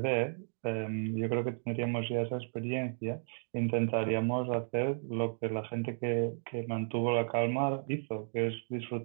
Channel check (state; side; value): silent; left; digital silence